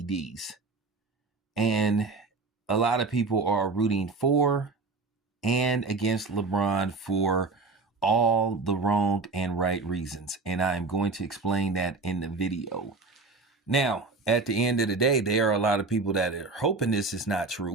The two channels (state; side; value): quieter; left; 3.8 dB